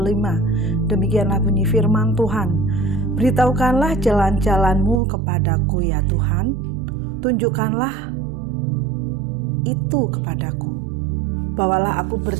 Demikianlah bunyi firman Tuhan. Beritahukanlah jalan-jalanmu kepadaku ya Tuhan. Tunjukkanlah itu kepadaku. Bawalah aku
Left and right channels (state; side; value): drops out; left; at 5.0 s